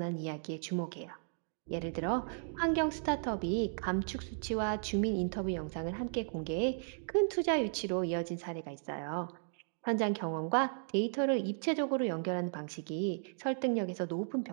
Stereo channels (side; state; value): left; silent; digital silence